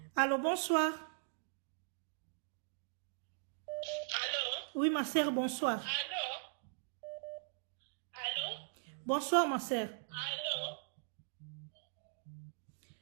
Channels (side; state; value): left; silent; digital silence